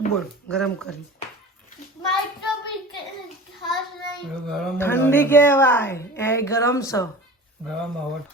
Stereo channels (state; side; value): normal; both; correlation 0.36